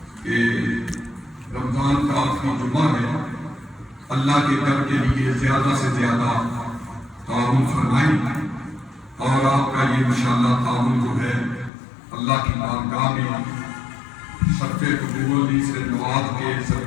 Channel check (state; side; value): drops out; right; at 11.7 s